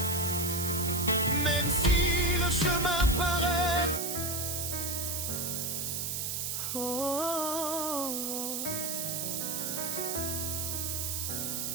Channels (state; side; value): noise; right; hiss, 1 dB below the sound